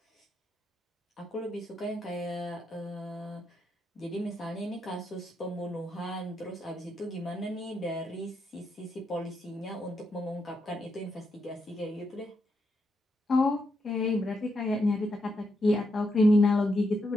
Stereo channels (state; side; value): normal; both; correlation 0.81